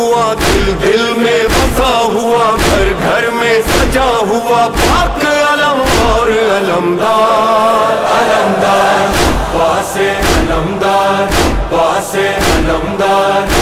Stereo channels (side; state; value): both; identical; correlation 1.00